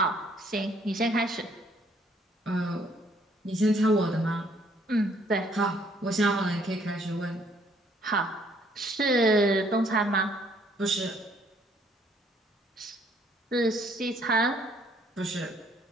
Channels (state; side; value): normal; both; correlation 0.65